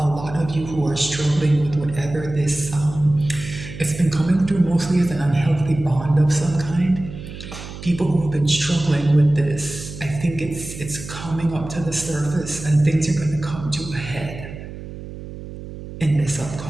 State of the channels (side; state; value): right; noise; hum, 12 dB below the sound